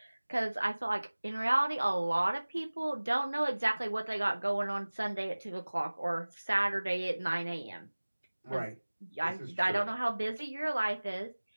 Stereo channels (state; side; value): inverted; both; correlation -1.00